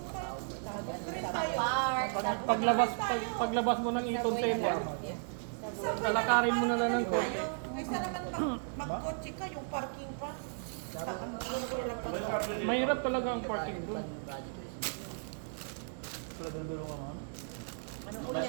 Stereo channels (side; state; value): left; silent; 55 dB below the other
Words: park. Paglabas mo ng Eaton Center, Yeah. lalakarin mo na lang ng konti. Kaysa naman mag-kotse ka, yung parking pa. Mahirap talaga ang parking doon.